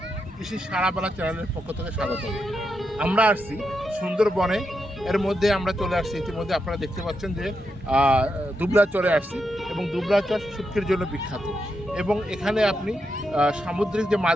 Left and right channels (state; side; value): normal; both; correlation 0.84